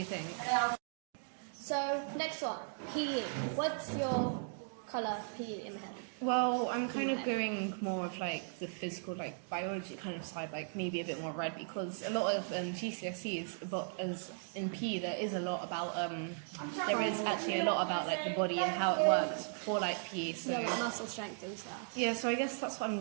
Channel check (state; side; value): silent; left; digital silence